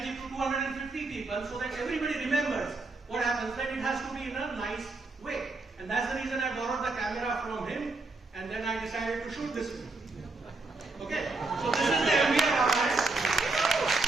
to 250 people, so that everybody remembers what happens, then it has to be in a nice way. And that's the reason I borrowed the camera from him, and then I decided to shoot this film. Okay? So this is the MBA Ramayana.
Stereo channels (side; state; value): left; quieter; 3.5 dB